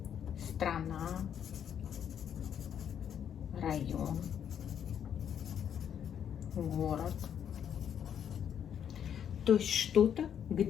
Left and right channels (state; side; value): quieter; right; 8.8 dB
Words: страна, район, город. То есть что-то,